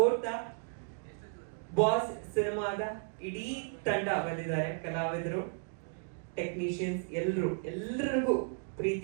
ಬಾಸ್ ಸಿನಿಮಾದ ಇಡೀ ತಂಡ ಬಂದಿದ್ದಾರೆ. ಕಲಾವಿದರು, ಟೆಕ್ನಿಷಿಯನ್ಸ್ ಎಲ್ಲರಿಗೂ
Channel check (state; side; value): silent; left; 55 dB below the other